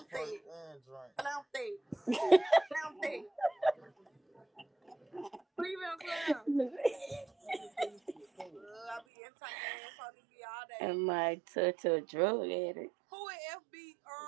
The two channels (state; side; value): drops out; left; at 9.0 s